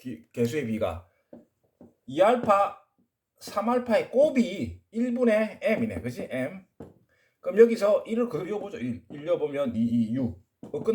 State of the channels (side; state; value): both; identical; correlation 1.00